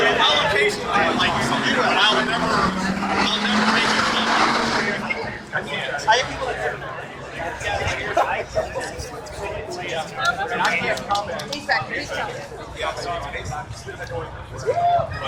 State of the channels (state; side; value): identical; both; correlation 1.00